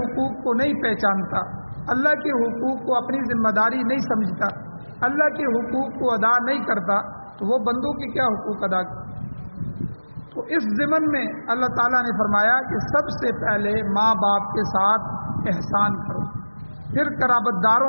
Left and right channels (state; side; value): inverted; both; correlation -1.00